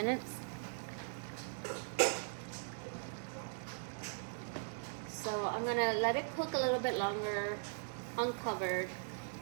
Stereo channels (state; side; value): silent; left; digital silence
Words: So I'm gonna let it cook a little bit longer, uncovered,